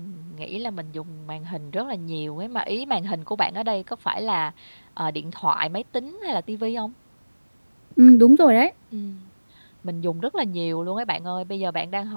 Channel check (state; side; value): inverted; both; correlation -1.00